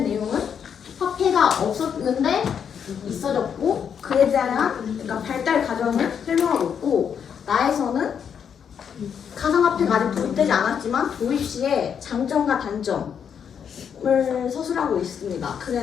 내용은 화폐가 없었는데 있어졌고, 그에 대한 그러니까 발달 과정을 설명하고 있고, 나에서는 가상화폐가 아직 도입되지 않았지만 도입 시에 장점과 단점을 서술하고 있습니다.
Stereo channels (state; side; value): quieter; right; 7.6 dB